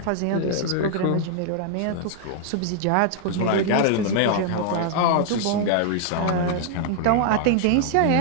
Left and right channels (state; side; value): different; both; correlation -0.01